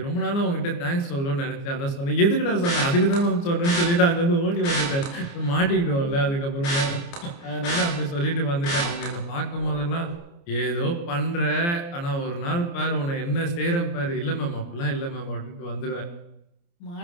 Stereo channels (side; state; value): right; late; 29 ms